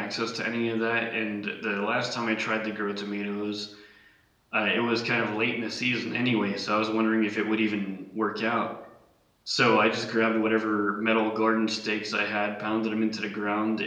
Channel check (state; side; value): identical; both; correlation 1.00